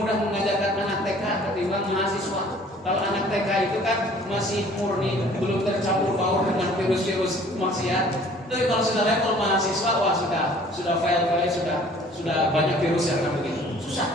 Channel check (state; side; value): normal; both; correlation 0.53